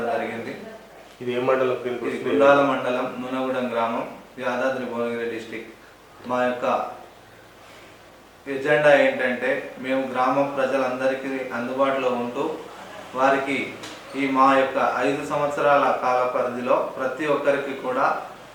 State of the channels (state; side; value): identical; both; correlation 1.00